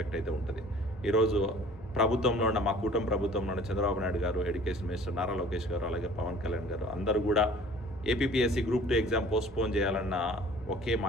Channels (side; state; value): both; normal; correlation 0.50